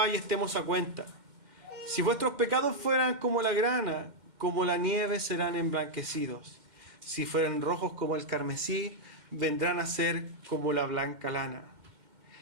y estemos a cuenta. Si vuestros pecados fueran como la grana, como la nieve serán emblanquecidos. Si fueran rojos como el carmesí, vendrán a ser como la blanca lana.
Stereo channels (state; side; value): late; left; 2.1 ms